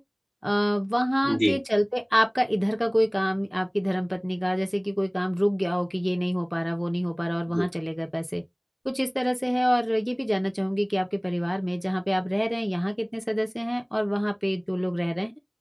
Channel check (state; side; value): identical; both; correlation 1.00